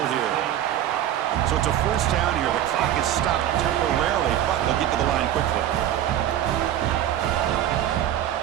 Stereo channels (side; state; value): left; quieter; 11.5 dB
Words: here. So it's a 1st down here. The clock is stopped temporarily, but they'll get to the line quickly.